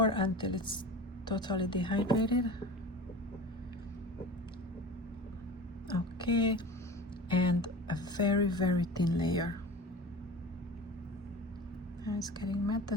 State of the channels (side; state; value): both; normal; correlation 0.34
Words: until it's totally dehydrated. Okay, and a very, very thin layer. Now it's getting matte